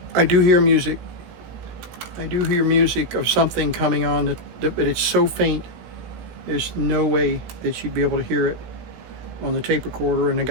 I do hear music. I do hear music of something coming on, but it's so faint, there's no way that you'd be able to hear it on the tape recorder, and I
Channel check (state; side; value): late; left; 18 ms